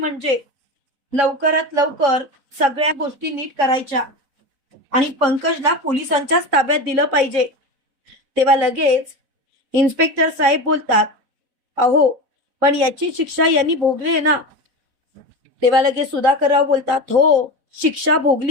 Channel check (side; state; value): left; late; 3.6 ms